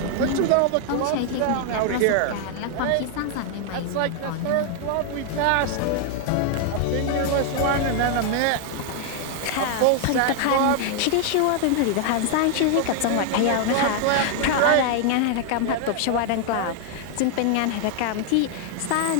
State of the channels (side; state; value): both; different; correlation 0.00